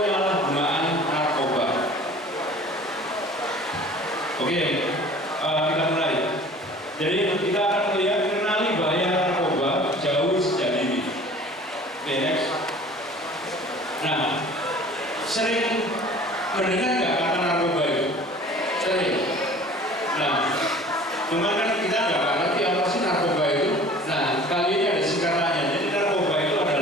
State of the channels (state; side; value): normal; both; correlation 0.46